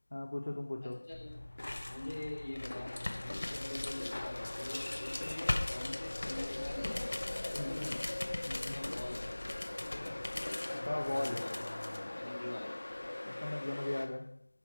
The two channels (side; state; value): both; inverted; correlation -1.00